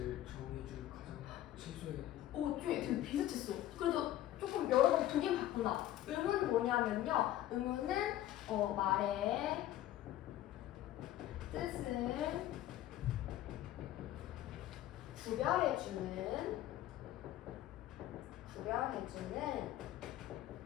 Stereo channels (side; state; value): right; quieter; 13.4 dB